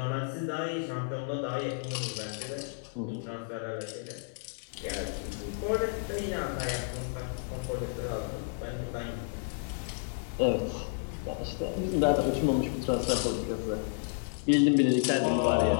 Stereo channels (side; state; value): right; silent; digital silence